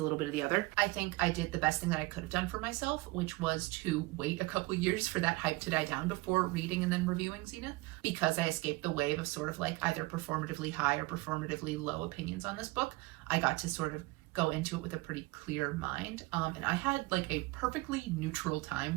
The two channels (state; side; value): quieter; left; 22.8 dB